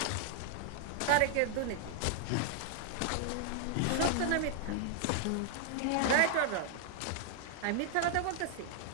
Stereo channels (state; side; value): different; both; correlation 0.00